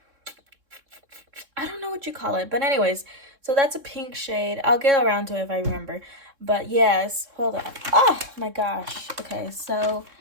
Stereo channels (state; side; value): late; left; 3.7 ms